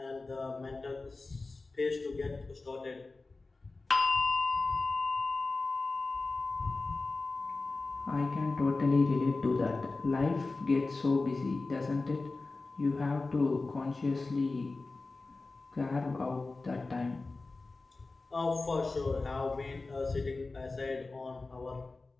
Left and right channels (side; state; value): right; quieter; 3.5 dB